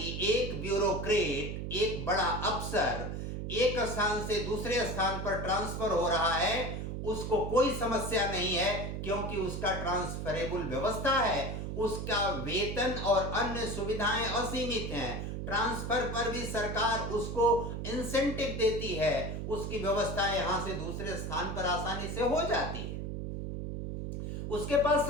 एक ब्यूरोक्रेट, एक बड़ा अफसर एक स्थान से दूसरे स्थान पर ट्रांसफर हो रहा है, उसको कोई समस्या नहीं है, क्योंकि उसका ट्रांसफरेबल व्यवस्था है, उसका वेतन और अन्य सुविधाएं असीमित हैं, ट्रांसफर पर भी सरकार उसको इंसेंटिव देती है, उसकी व्यवस्था यहां से दूसरे स्थान पर आसानी से हो जाती है, उसके पास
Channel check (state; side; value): noise; right; hum, 4 dB below the sound